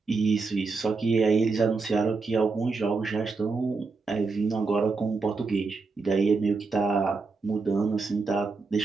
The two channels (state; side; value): quieter; left; 4.2 dB